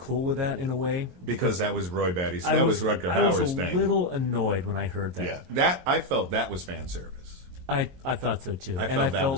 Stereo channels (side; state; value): left; late; 22 ms